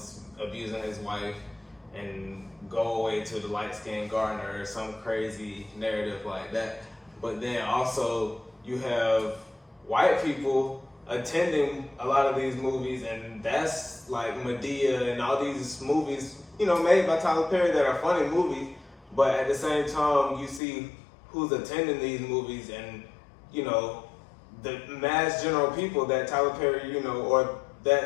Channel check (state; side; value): drops out; right; at 20.6 s